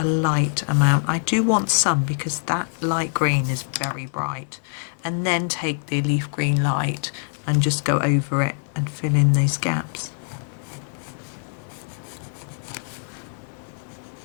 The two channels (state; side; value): silent; right; digital silence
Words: light amount. I do want some because that light green is very bright. And then take the leaf green light and just go over it and fill in those gaps.